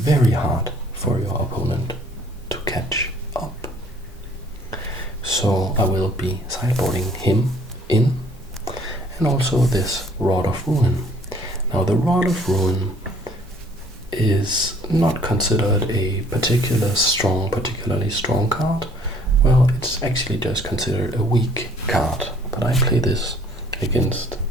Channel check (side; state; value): both; normal; correlation 0.58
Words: hard for your opponent to catch up. So I will be sideboarding him in, and also this Rod of Ruin. Now the Rod of Ruin is not considered a particularly strong card. Well, it's actually just considered a weak card, but I play this against